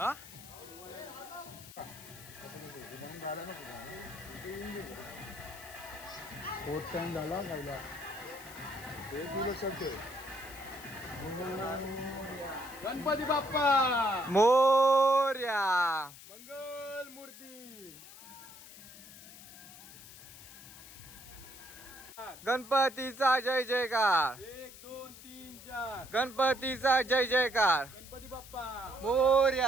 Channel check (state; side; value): noise; left; hiss, 17 dB below the sound